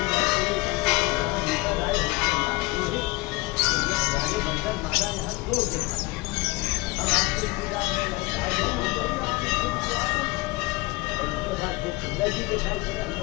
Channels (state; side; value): quieter; right; 23.0 dB